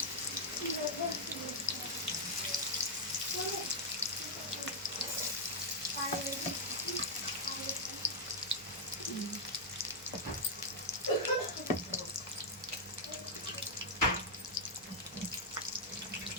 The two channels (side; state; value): both; normal; correlation -0.05